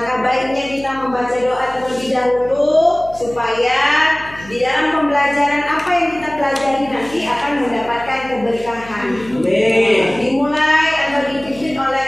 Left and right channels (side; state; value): left; noise; hum, 19 dB below the sound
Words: baiknya kita membaca doa terlebih dahulu supaya di dalam pembelajaran apa yang kita pelajari nanti akan mendapatkan keberkahan. Dimulai atau dipimpin